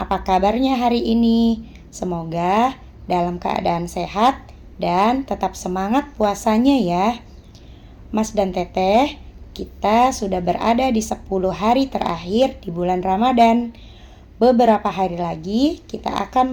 kabarnya hari ini? Semoga dalam keadaan sehat dan tetap semangat puasanya ya. Mas dan Teteh, kita sudah berada di 10 hari terakhir di bulan Ramadan. Beberapa hari lagi kita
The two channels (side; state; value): both; identical; correlation 1.00